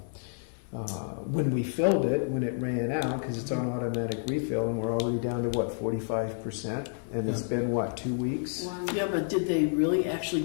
when we filled it, when it ran out, because it's on automatic refill, and we're already down to 45%, and it's been 2 weeks? Yeah, but did they really actually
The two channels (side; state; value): right; silent; 58 dB below the other